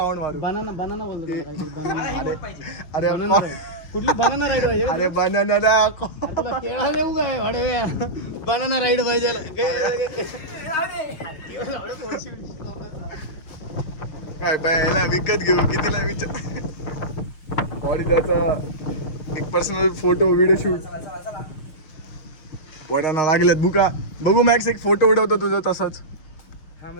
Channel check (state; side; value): late; right; 6.5 ms